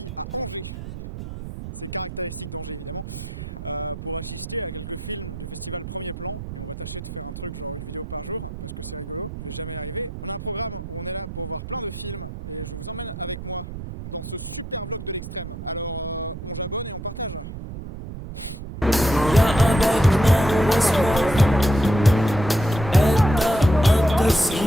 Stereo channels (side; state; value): right; noise; rumble, 9 dB below the sound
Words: à Angers. C'est caractéristique d'Angers évidemment, pour assister à quelques films du festival Premier Plan. Et on va tâcher de faire un truc genre une vidéo par jour, parce que c'est rigolo, je vais jamais y arriver. On a un programme où on est là pour voir plein de films, et je vous emmène avec moi dans ce super vlog de l'extrême. Alors on j'abonne et on partage.